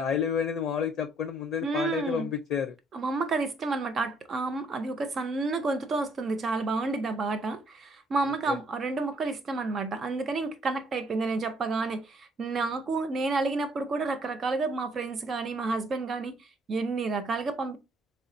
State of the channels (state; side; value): normal; both; correlation 0.66